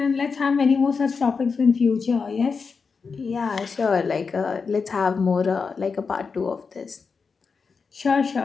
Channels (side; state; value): right; quieter; 5.1 dB